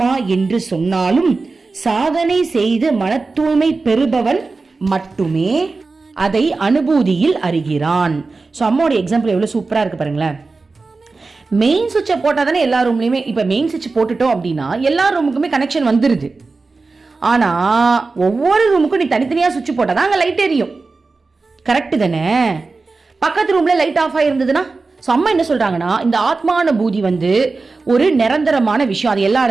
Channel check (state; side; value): quieter; left; 3.9 dB